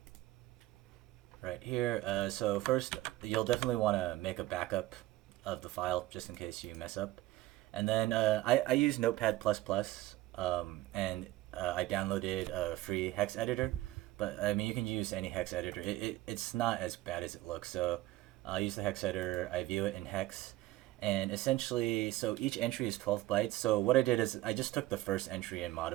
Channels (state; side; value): quieter; left; 16.9 dB